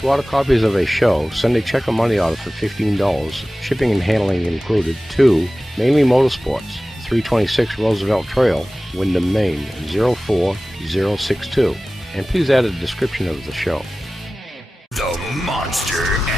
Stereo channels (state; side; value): normal; both; correlation 0.97